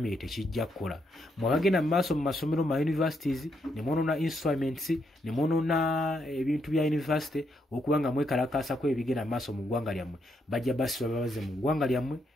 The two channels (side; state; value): both; normal; correlation 0.77